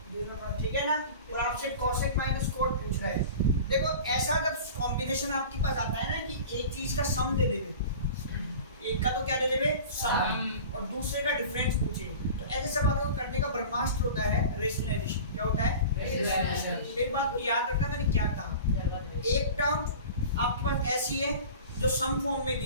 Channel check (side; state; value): both; inverted; correlation -0.38